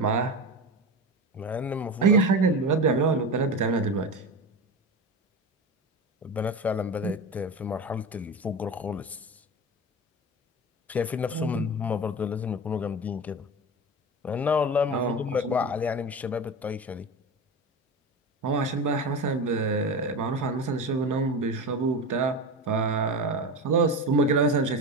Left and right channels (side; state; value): both; normal; correlation 0.25